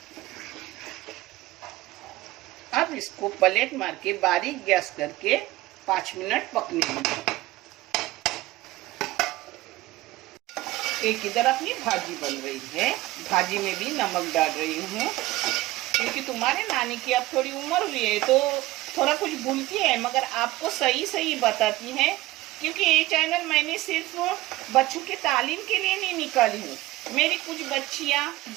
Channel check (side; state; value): left; quieter; 18.1 dB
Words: अब इसको प्लेट मार के बारीक गैस करके 5 मिनट पकने दीजिए। एक इधर अपनी भाजी बन रही है, भाजी में भी नमक डाल रही हूँ, क्योंकि तुम्हारे नानी की अब थोड़ी उम्र हुई है तो थोड़ा कुछ भूलती है, मगर आपको सही सही बताती है। क्योंकि ये चैनल मैंने सिर्फ बच्चों के तालीम के लिए नहीं निकाली हूँ। मेरी कुछ बच्चियाँ